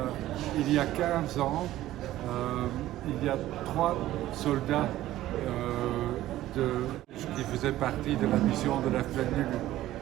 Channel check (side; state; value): left; quieter; 14.7 dB